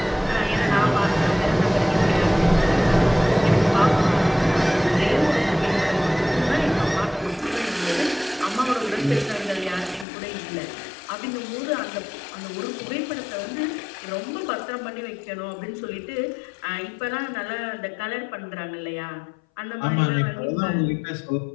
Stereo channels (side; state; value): right; drops out; at 10.1 s